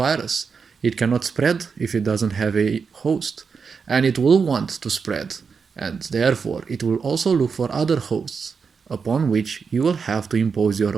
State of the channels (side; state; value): left; quieter; 5.6 dB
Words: It cannot spread if it doesn't have a host. And it will want to spread. And therefore, it will also look for other hosts, upon which you will have to impose your